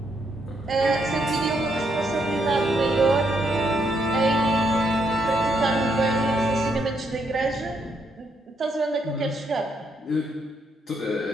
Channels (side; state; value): both; normal; correlation 0.76